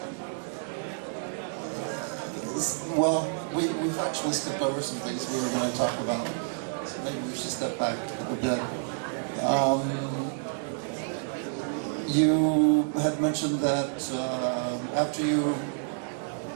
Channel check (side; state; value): left; silent; digital silence